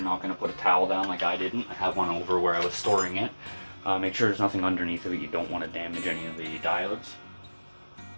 not going to put a towel down like I didn't, I have one over where I was storing it. Make sure there's nothing underneath of it. You don't want to damage any of the diodes.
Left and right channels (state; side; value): inverted; both; correlation -1.00